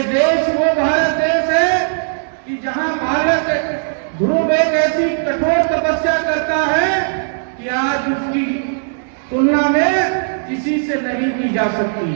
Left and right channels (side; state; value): left; silent; digital silence